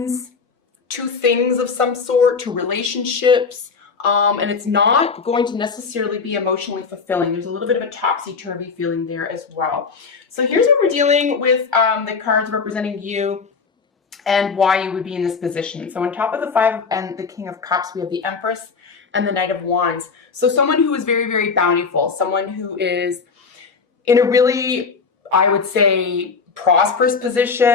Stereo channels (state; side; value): quieter; right; 5.1 dB